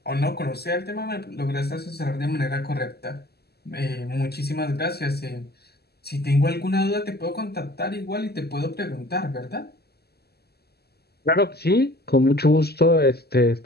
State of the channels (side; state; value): right; late; 0.46 ms